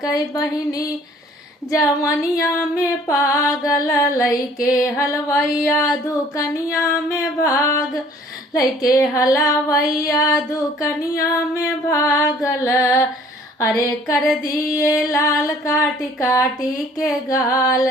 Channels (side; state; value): both; normal; correlation 0.55